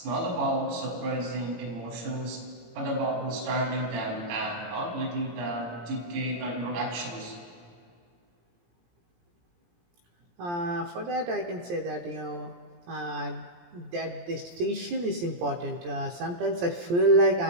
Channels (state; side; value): late; left; 17 ms